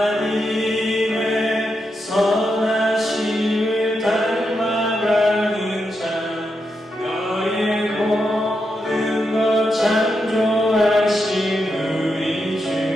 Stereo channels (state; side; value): normal; both; correlation 0.85